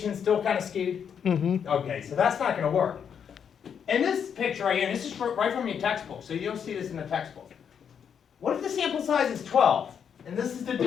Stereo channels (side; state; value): right; quieter; 7.7 dB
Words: still kind of skewed? Mm-hmm. Okay, so that's not going to work. In this picture right here, and this is right from your textbook, so you'll see this in the textbook. What if the sample size is 12, and this is the